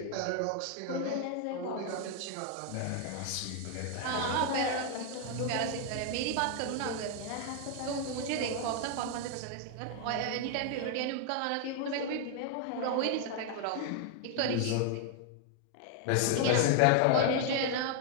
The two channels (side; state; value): both; different; correlation 0.00